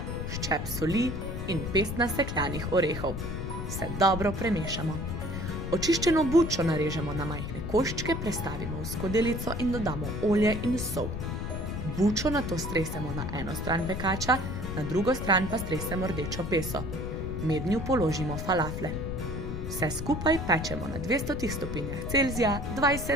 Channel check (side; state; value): left; noise; rumble, 5 dB below the sound